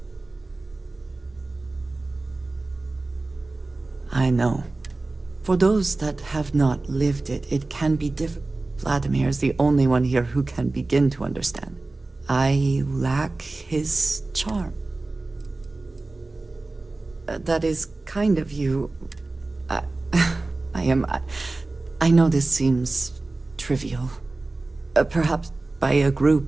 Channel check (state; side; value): quieter; left; 3.2 dB